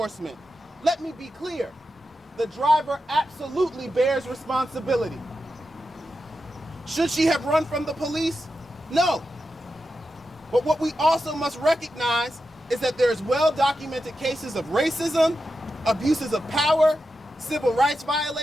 Let me be clear. The driver absolutely bears responsibility. Should she have run from the police? No. But what we also must recognize is that there's well-documented cases of racism, abuses of power, civil rights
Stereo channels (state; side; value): normal; both; correlation 0.89